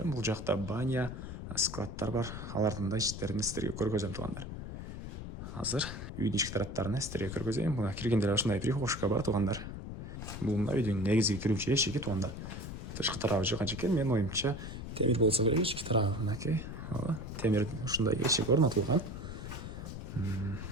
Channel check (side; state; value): left; noise; rumble, 8 dB below the sound